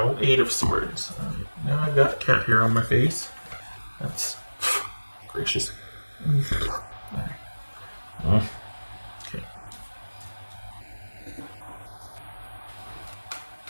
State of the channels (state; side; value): inverted; both; correlation -1.00